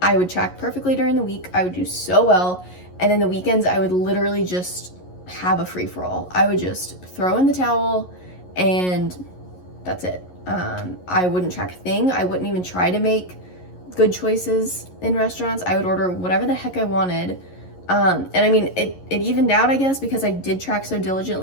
I would track perfectly during the week. I would do so well, and then the weekends I would literally just have a free-for-all. I would just throw in the towel, and that's it. I wouldn't track a thing. I wouldn't even try to make good choices in restaurants. I would order whatever the heck I wanted. And I mean, it evened out, I guess, because I did track so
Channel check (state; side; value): late; right; 11 ms